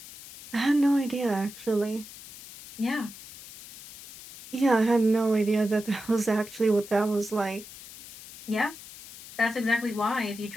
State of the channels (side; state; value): left; noise; hiss, 16 dB below the sound